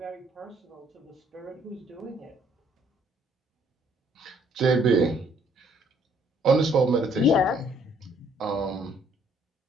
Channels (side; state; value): both; normal; correlation 0.64